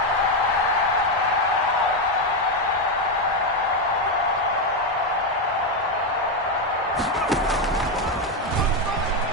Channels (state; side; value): normal; both; correlation 0.07